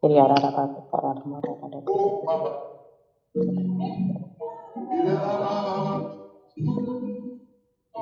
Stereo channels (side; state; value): both; identical; correlation 1.00